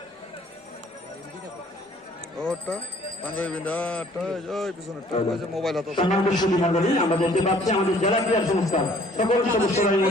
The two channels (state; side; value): normal; both; correlation 0.57